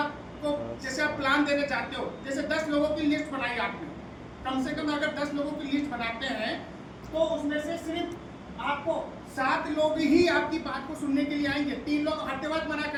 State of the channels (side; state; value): both; identical; correlation 1.00